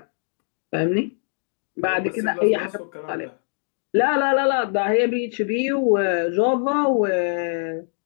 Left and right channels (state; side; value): silent; right; digital silence